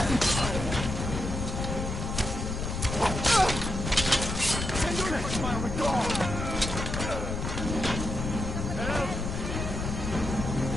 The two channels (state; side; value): noise; left; rumble, 4 dB below the sound